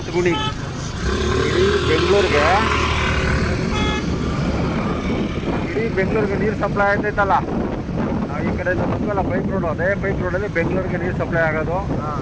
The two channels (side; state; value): both; identical; correlation 1.00